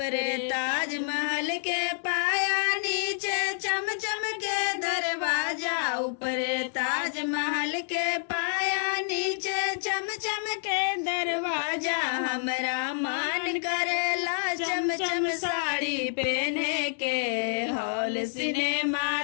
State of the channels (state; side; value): silent; right; digital silence